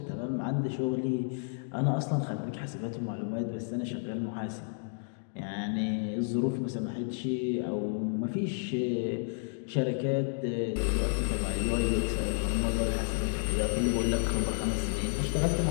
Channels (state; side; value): silent; right; digital silence